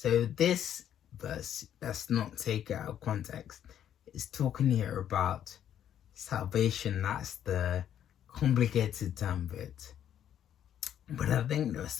this verse, let's not take it out of context. It's talking here about salvation. That's the complicated term of it. But I think there are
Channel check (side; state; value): right; quieter; 10.2 dB